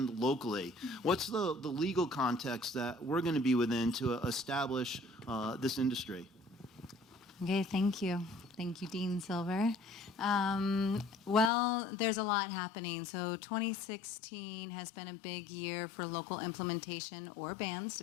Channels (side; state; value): right; drops out; at 11.5 s